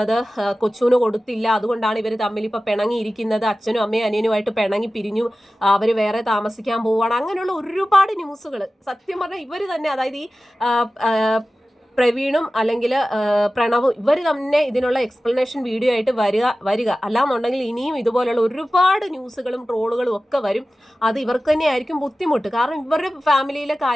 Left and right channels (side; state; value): both; normal; correlation 0.95